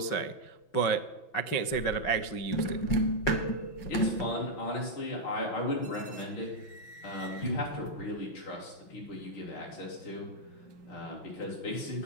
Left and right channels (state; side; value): late; right; 6.0 ms